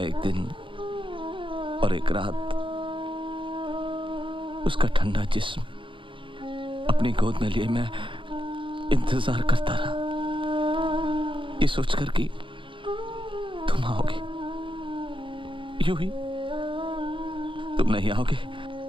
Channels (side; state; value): left; late; 0.25 ms